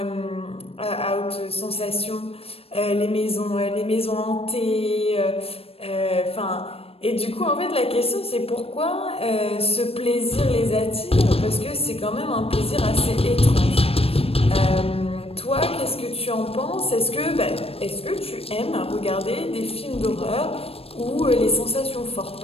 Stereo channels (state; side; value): late; right; 0.28 ms